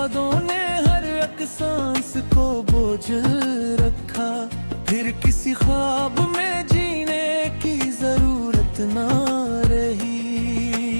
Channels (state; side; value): inverted; both; correlation -1.00